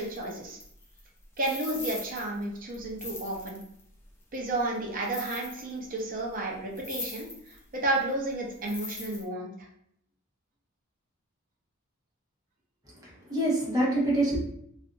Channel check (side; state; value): both; normal; correlation 0.28